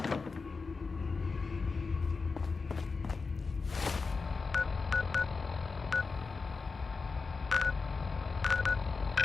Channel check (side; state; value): right; quieter; 4.4 dB